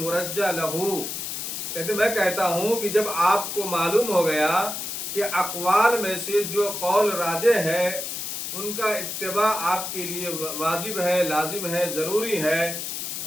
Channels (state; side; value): noise; left; hiss, 5 dB below the sound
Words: لہو، کہتے میں کہتا ہوں کہ جب آپ کو معلوم ہو گیا کہ اقوال میں سے جو قول راجح ہے ان کا اتباع آپ کے لیے واجب ہے، لازم ہے، ضروری ہے،